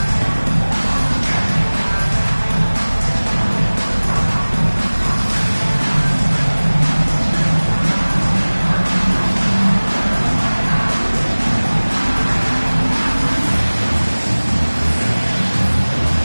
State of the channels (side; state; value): both; inverted; correlation -1.00